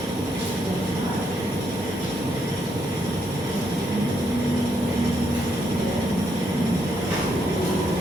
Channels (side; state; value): both; normal; correlation 0.77